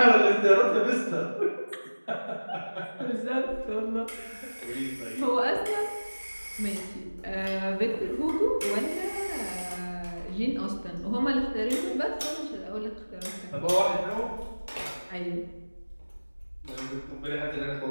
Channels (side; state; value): both; inverted; correlation -1.00